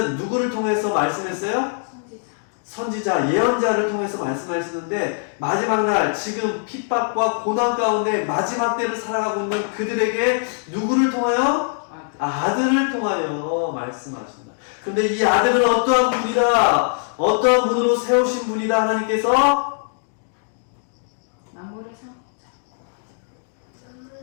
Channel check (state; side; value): silent; right; digital silence